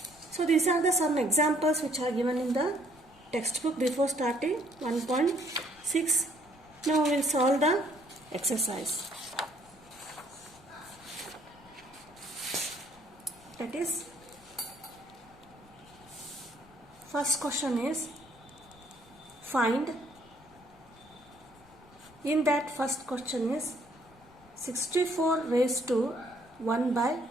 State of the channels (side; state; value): left; noise; rumble, 26 dB below the sound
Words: So these are the some examples which are given in the textbook before starting 1.6. Now we will solve the exercise. That is, first question is find. In that first question is 64 raised to 1 by